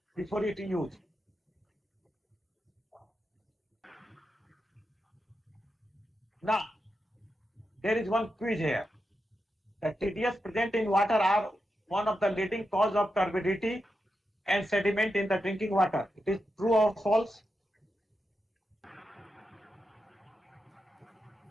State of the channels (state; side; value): normal; both; correlation 0.88